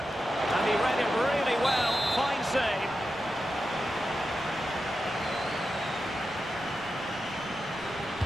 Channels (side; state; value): both; normal; correlation 0.90